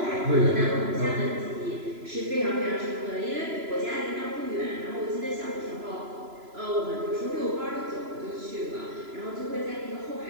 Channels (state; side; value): late; left; 3.0 ms